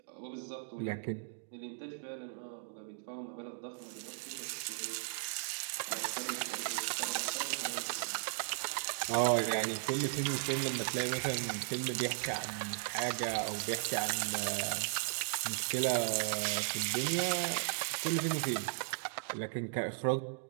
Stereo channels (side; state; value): left; silent; digital silence